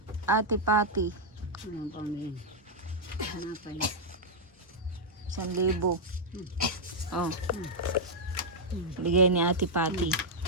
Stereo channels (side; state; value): both; normal; correlation -0.05